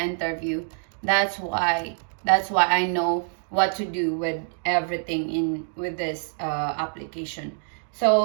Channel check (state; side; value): silent; left; digital silence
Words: That's why I know what to do with everything with this application.